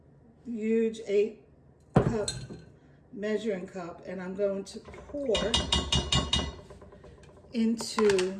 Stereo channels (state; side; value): identical; both; correlation 1.00